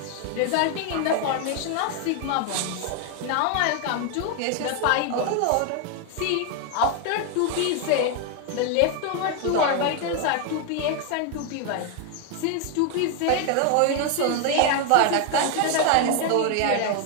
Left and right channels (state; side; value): different; both; correlation 0.01